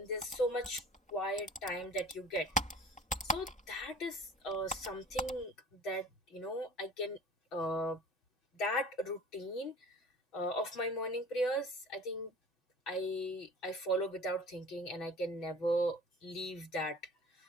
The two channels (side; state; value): both; normal; correlation 0.43